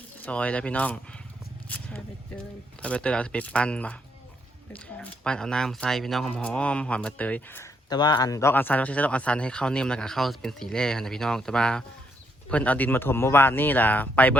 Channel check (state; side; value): normal; both; correlation 0.74